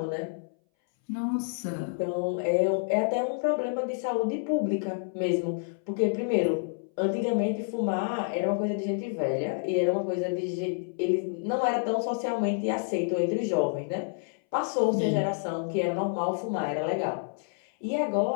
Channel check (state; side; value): silent; right; 59 dB below the other